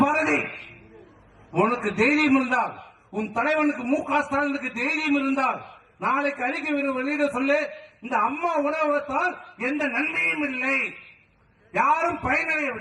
பாரதி உனக்கு தைரியம் இருந்தால், உன் தலைவனுக்கு மு.க. ஸ்டாலினுக்கு தைரியம் இருந்தால் நாளைக்கு அறிக்கை வெளியிட சொல்லு. இந்த அம்மா உணவகத்தால் எந்த நன்மையும் இல்லை, யாரும்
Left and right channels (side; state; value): both; identical; correlation 1.00